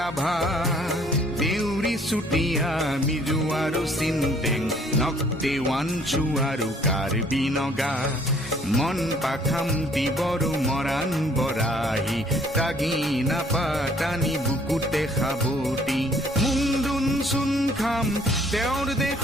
দেউৰী চুতীয়া মিজু আৰু চিন্তেং নক্তে ৱানচু আৰু কাৰ্বি নগা। মন পাখামতি বড়ো মৰাণ বৰাহী তাগি নাপাতানি বুকুতে সাবতি মুংদুন চুন খাম তেওঁৰ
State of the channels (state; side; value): normal; both; correlation 0.60